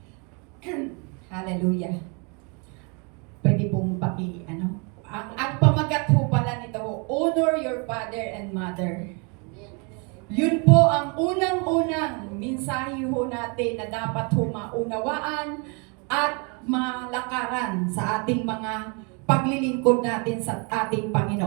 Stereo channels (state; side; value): quieter; left; 34.0 dB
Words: Hallelujah. Pwede pong ang pamagat po pala nito, honor your father and mother. Yun po ang unang-unang mensahe ho natin na dapat ho maunawaan at malakaran sa ating mga paglilingkod natin sa ating